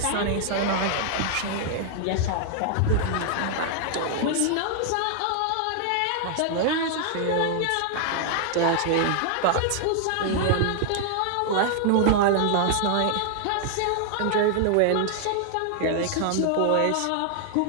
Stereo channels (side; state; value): both; different; correlation 0.00